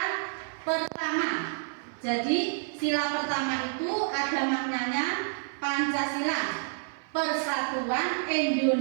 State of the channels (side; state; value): left; silent; 59 dB below the other